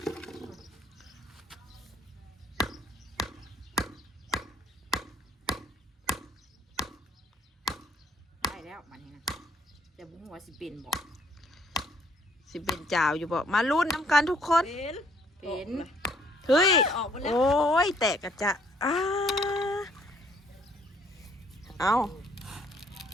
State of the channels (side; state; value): both; normal; correlation 0.64